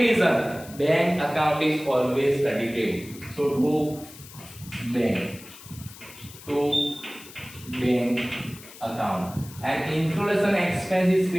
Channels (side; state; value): left; noise; hiss, 18 dB below the sound